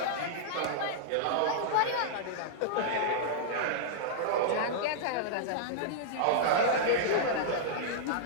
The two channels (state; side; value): different; both; correlation -0.02